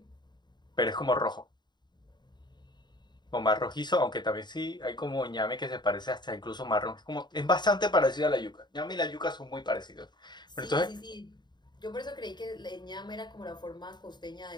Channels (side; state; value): right; late; 0.21 ms